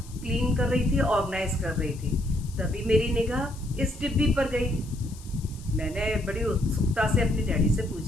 क्लीन कर रही थी, ऑर्गेनाइज कर रही थी। तभी मेरी निगाह इस डिब्बी पर गई। मैंने बड़ी उत्सुकता से अपने डैडी से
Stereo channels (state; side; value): noise; left; hiss, 21 dB below the sound